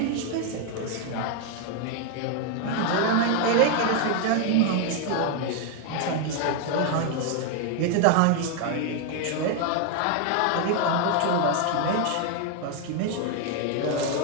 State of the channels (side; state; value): both; different; correlation 0.01